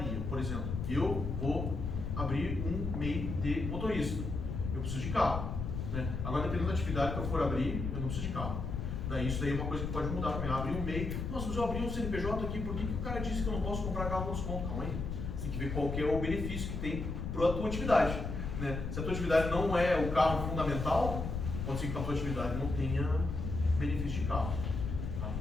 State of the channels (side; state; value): left; noise; rumble, 4 dB below the sound